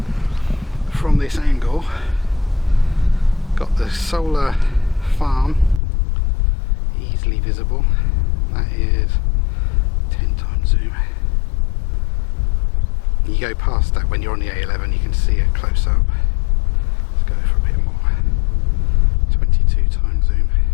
From this angle, got the solar farm easily visible. That is 10 times zoom. You go past that when you're on the A11, you can see it close up. Let's go for a bit more. 22 times zoom.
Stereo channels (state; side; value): drops out; right; at 5.8 s